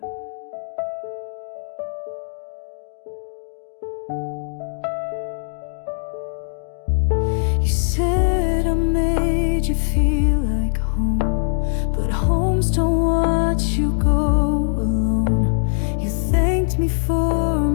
You said I made you feel like home, but homes don't watch you go alone. You thanked me for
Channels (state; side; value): silent; right; digital silence